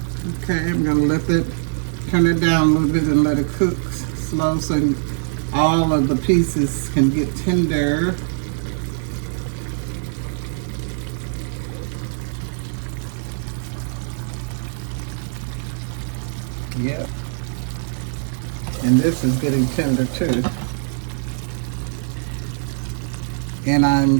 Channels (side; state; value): left; silent; 64 dB below the other